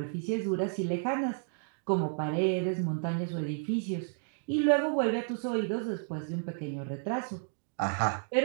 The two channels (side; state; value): left; silent; 56 dB below the other